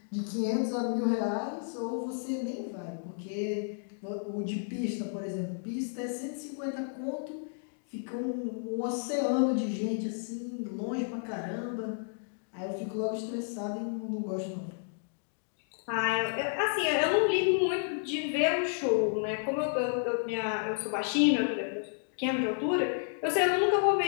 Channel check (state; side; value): silent; right; digital silence